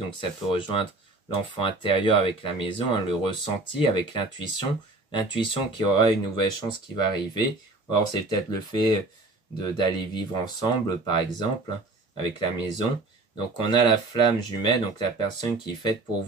ça peut rejoindre l'enfant intérieur avec la maison, hein, le ressenti avec l'intuition qui aura une nouvelle chance qui va arriver. Or c'est peut-être le fait d'aller vivre ensemble, par exemple, hein, avec la maison. Donc on a la flamme jumelle, donc la personne qui est faite pour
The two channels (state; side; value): quieter; left; 3.1 dB